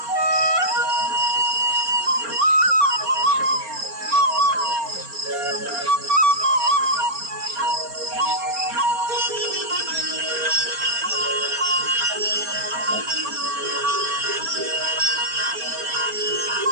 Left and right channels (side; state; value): left; late; 4.3 ms